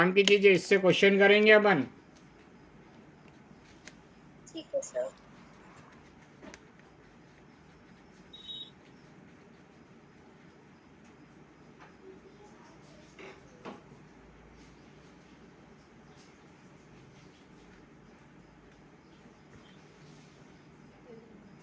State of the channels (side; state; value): both; identical; correlation 1.00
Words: की चीज़ है, इससे क्वेश्चन करेंगे अपन। ठीक है सर।